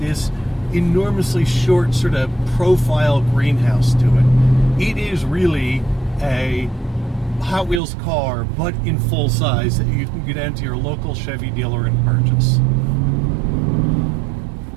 enormously short sort of profile greenhouse to it. It is really a Hot Wheels car, but in full size, that you can get into your local Chevy dealer and purchase.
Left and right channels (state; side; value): drops out; left; at 7.8 s